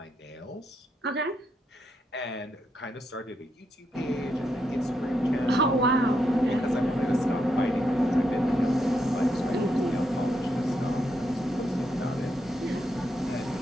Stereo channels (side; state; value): both; normal; correlation 0.81